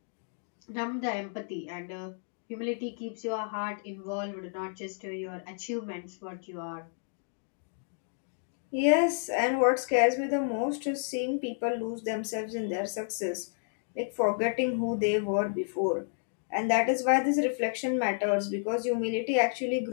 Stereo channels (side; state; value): right; silent; digital silence